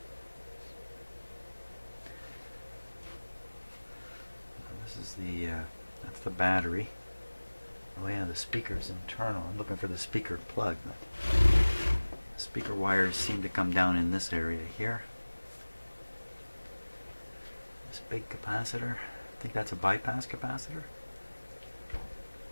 This is the that's the battery. Oh yeah, the speaker's internal. I'm looking for the speaker plug. The speaker wires seem to come down in this area here. This big capacitor. I think that's a bypass capacitor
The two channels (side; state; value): both; inverted; correlation -1.00